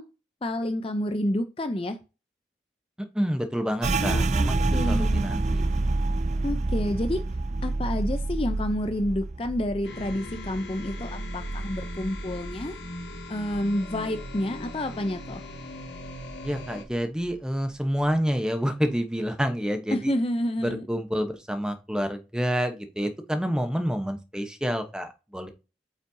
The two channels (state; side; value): normal; both; correlation 0.88